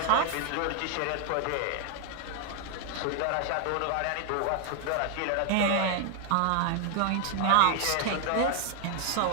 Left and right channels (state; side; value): different; both; correlation 0.00